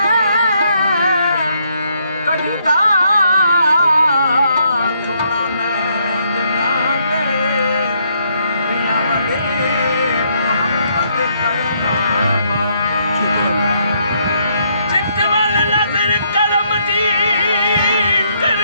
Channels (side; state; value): both; inverted; correlation -0.72